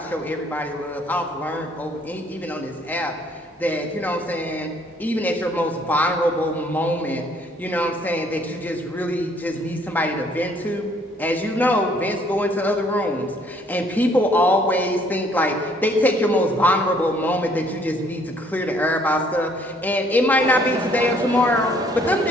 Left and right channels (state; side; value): normal; both; correlation 0.62